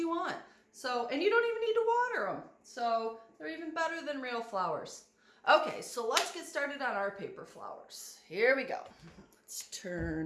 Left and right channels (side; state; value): both; identical; correlation 1.00